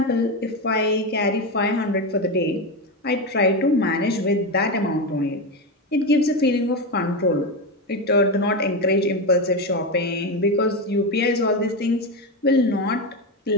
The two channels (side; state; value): both; normal; correlation 0.14